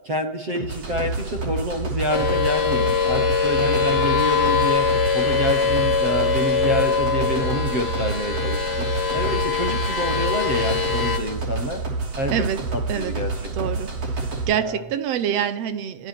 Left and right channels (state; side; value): late; left; 7.9 ms